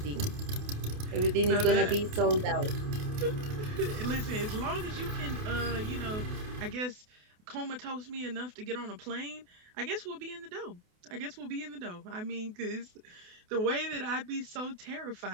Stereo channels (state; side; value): late; left; 28 ms